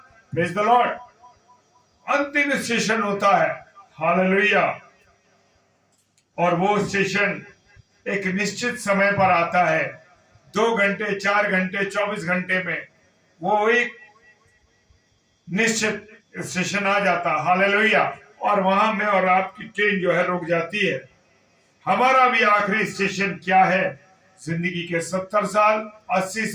Praise the Lord. अंतिम स्टेशन होता है। हालेलुया। और वो स्टेशन एक निश्चित समय पर आता है। 2 घंटे, 4 घंटे, 24 घंटे में वो एक निश्चित स्टेशन आ जाता। हालेलुया। और वहां में और आपकी ट्रेन जो है रुक जाती है। हमारा भी आखिरी स्टेशन क्या है? जिंदगी के 70 साल, 80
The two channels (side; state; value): both; identical; correlation 1.00